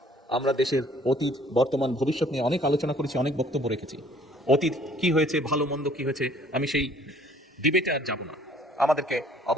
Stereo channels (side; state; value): both; normal; correlation 0.57